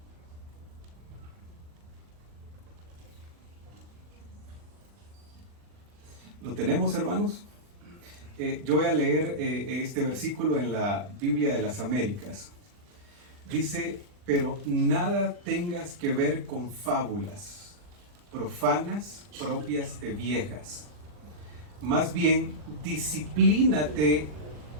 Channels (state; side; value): late; left; 40 ms